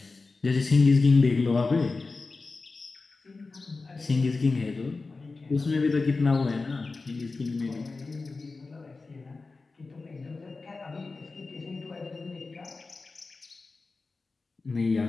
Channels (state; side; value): quieter; right; 3.8 dB